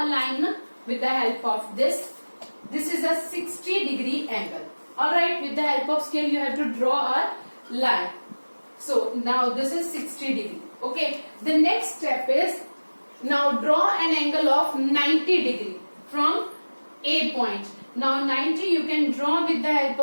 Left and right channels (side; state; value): both; inverted; correlation -1.00